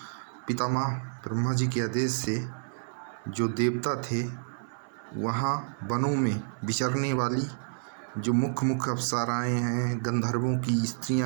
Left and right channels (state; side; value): silent; left; 58 dB below the other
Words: पितामह ब्रह्मा जी के आदेश से जो देवता थे, वहाँ वनों में विचरने वाली जो मुख्य अप्सराएँ हैं, गंधर्वों की